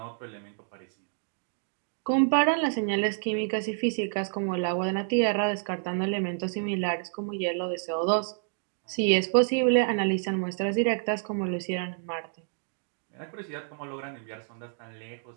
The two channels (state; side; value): silent; left; digital silence